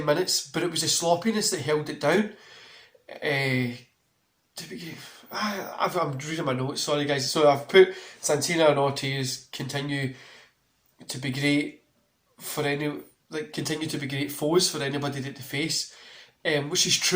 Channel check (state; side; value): identical; both; correlation 1.00